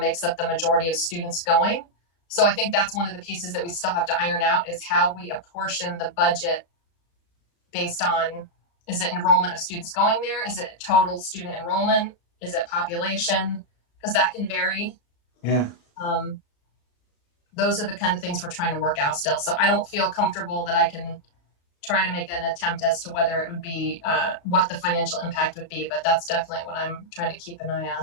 up the majority of students going. So I think that's one of the pieces that we still have to iron out, is how we apportion the budget based on, is it enrollment of students going there? Is it total student enrollment? Is it population? Because that can vary. Yeah. Those are the kind of things we're trying to work out still. So I don't feel comfortable that I can try to make an attempt as to whether it would be, what the financial impact would be, but that's definitely what I'm trying to keep an eye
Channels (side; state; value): right; late; 35 ms